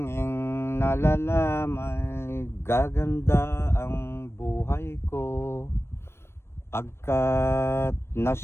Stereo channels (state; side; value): late; right; 0.12 ms